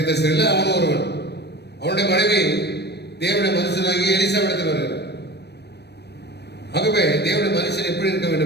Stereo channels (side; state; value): right; late; 0.48 ms